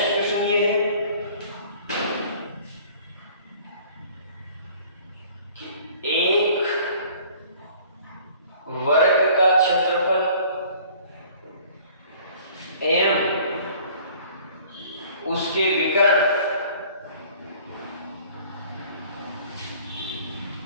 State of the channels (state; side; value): inverted; both; correlation -0.51